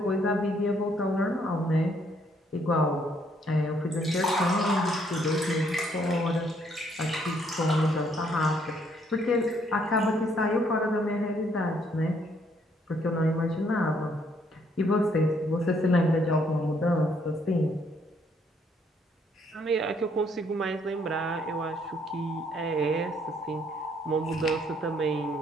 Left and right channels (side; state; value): both; normal; correlation 0.68